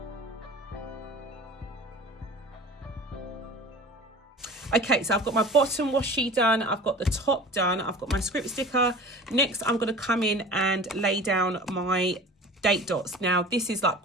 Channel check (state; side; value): normal; both; correlation 0.40